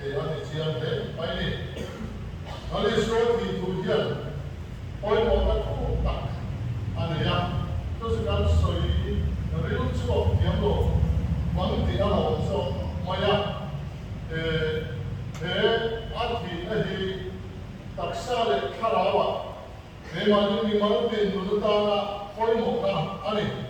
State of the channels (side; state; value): both; identical; correlation 1.00